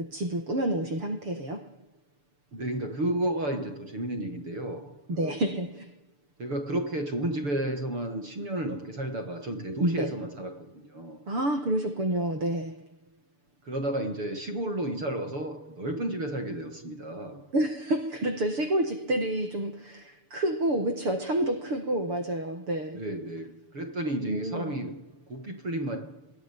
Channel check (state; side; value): late; left; 6.9 ms